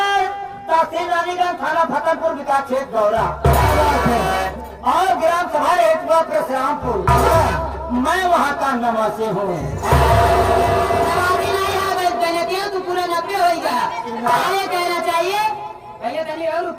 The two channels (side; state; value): both; identical; correlation 1.00